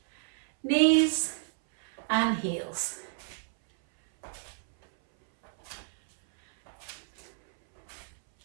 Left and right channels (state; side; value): silent; left; 58 dB below the other